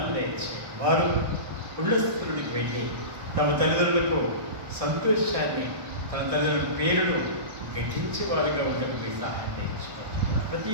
దయచేయండి. వారు ఉళ్ళ స్థితులకు వెళ్ళి తమ తల్లిదండ్రులకు సంతోషాన్ని, తన తల్లిదండ్రుల పేరును గట్టించే వారుగా ఉండడం మీ సహాయం తెచ్చుకుంటున్నాను. ప్రతి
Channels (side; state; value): left; late; 1.6 ms